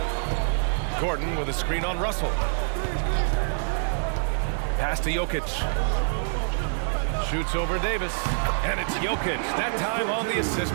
Gordon with a screen on Russell. Pass to Jokic. Shoots over Davis. And it's Jokic. That time on the assist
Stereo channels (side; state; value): left; silent; digital silence